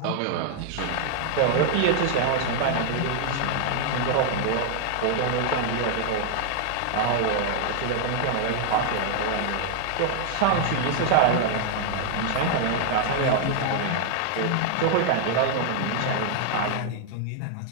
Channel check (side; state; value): both; different; correlation 0.00